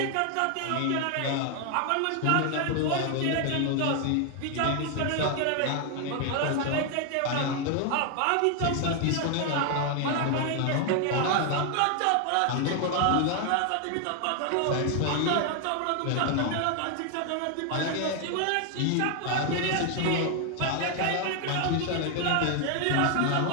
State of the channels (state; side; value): different; both; correlation 0.01